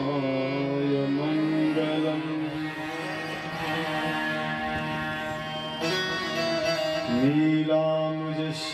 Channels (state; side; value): identical; both; correlation 1.00